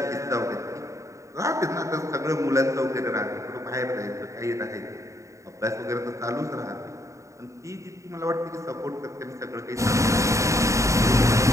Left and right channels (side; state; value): left; late; 0.15 ms